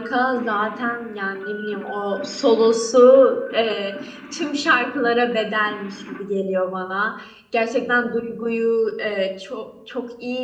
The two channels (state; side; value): identical; both; correlation 1.00